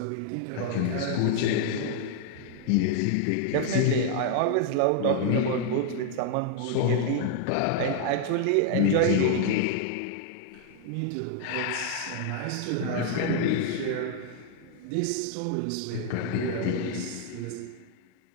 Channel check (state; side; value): different; both; correlation 0.00